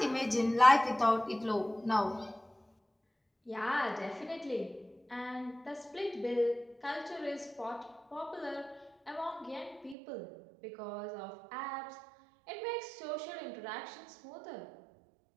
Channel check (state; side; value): drops out; left; at 10.0 s